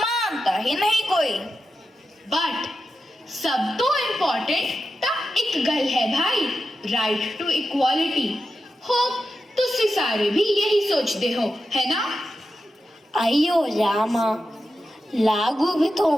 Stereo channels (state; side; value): normal; both; correlation 0.90